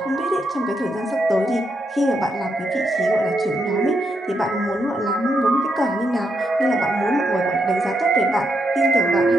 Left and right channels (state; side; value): normal; both; correlation 0.80